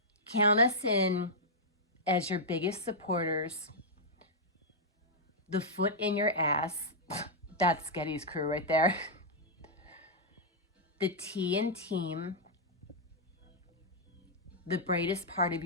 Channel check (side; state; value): both; normal; correlation -0.07